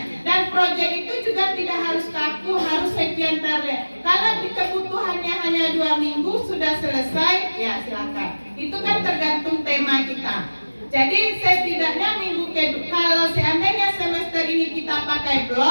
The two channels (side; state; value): both; inverted; correlation -1.00